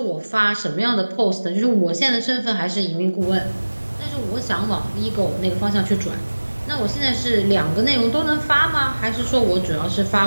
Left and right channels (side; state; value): both; inverted; correlation -1.00